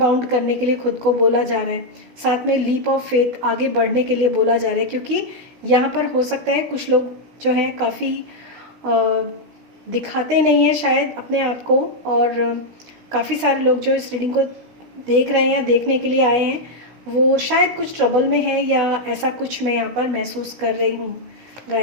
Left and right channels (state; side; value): late; left; 16 ms